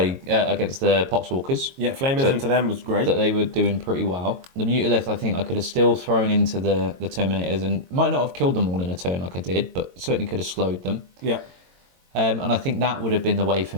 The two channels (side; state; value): left; late; 22 ms